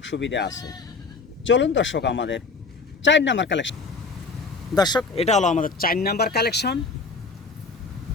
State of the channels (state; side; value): quieter; right; 4.2 dB